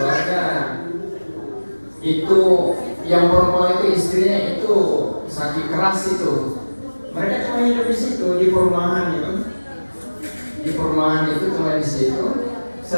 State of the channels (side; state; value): both; inverted; correlation -1.00